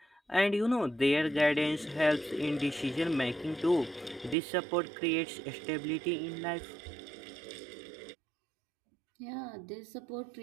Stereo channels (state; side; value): drops out; left; at 4.4 s